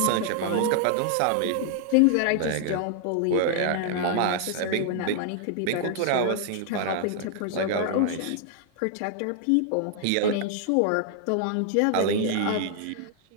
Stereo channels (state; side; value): different; both; correlation 0.00